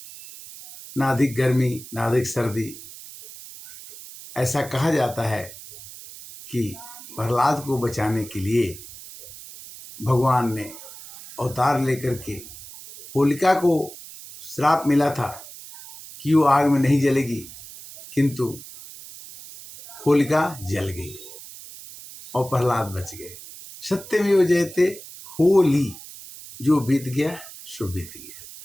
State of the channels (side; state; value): right; noise; hiss, 16 dB below the sound